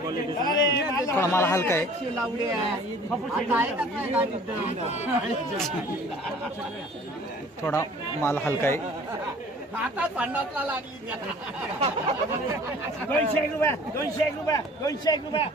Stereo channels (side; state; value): both; normal; correlation 0.49